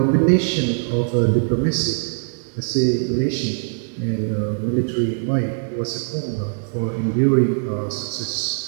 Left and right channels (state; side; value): silent; left; digital silence